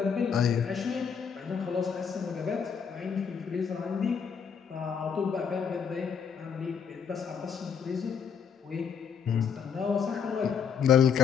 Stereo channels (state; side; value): quieter; right; 7.0 dB